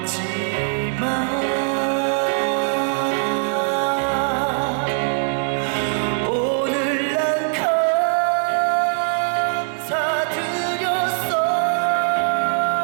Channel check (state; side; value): silent; left; digital silence